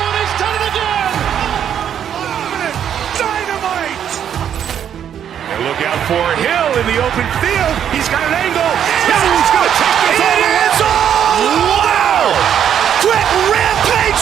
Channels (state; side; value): quieter; left; 9.2 dB